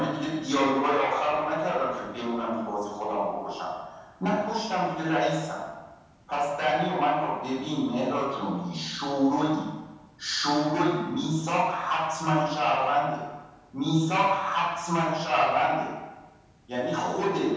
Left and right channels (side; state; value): both; identical; correlation 1.00